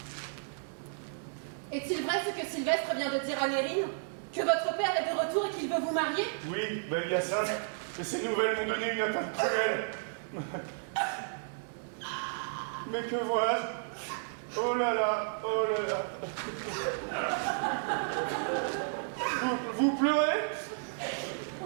Est-il vrai ce que Sylvestre vient de dire à Nérine? Que votre père est de retour et qu'il veut vous marier? Oui, belle Hyacinthe, mais ces nouvelles m'ont donné une atteinte cruelle. Mais que vois-je? Oh là là, oh là là. Vous pleurez?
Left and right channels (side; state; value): left; silent; digital silence